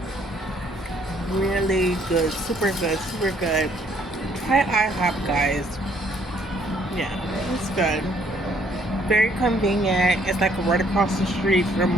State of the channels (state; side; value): normal; both; correlation 0.65